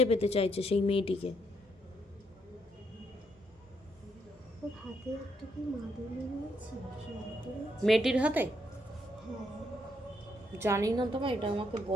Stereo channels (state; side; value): normal; both; correlation 0.75